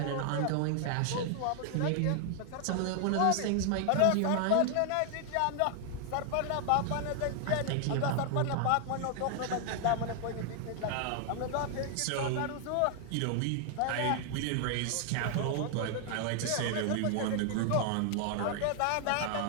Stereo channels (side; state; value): both; different; correlation 0.00